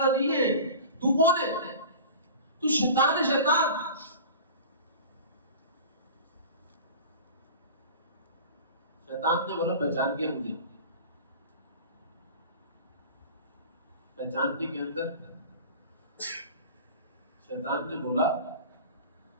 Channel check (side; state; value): both; inverted; correlation -0.37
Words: نہیں ہے، تو کون ہے؟ تو شیطان ہے، شیطان. شیطان نے بولا پہچان کیا مجھے. پہچاننے کے اندر شیطان نے بولا